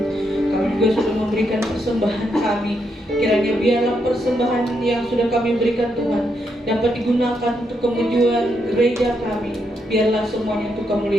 Kami juga sudah memberikan persembahan kami. Kiranya biarlah persembahan yang sudah kami berikan Tuhan dapat digunakan untuk kemajuan gereja kami. Biarlah semuanya untuk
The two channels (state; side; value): normal; both; correlation 0.80